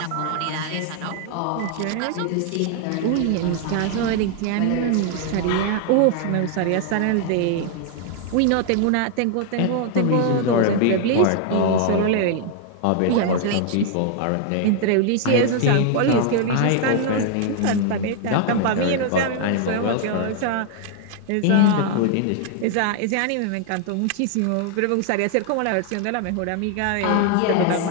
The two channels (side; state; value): both; different; correlation 0.00